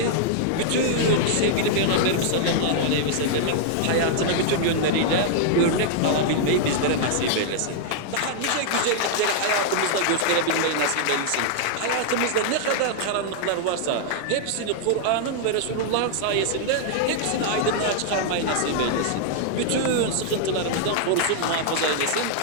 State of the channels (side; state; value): both; different; correlation -0.01